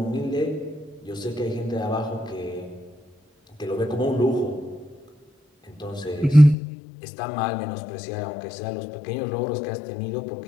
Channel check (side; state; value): right; drops out; at 6.6 s